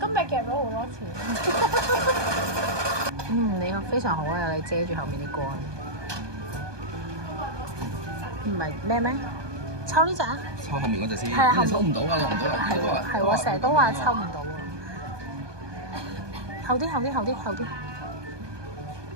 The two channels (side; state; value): left; late; 1.2 ms